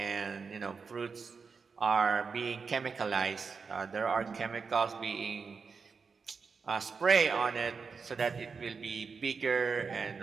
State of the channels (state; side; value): quieter; left; 5.2 dB